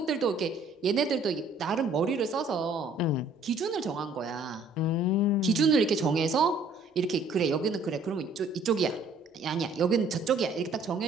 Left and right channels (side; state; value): left; quieter; 3.1 dB